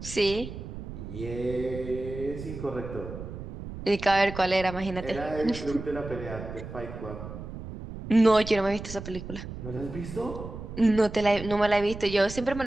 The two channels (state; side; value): noise; right; rumble, 10 dB below the sound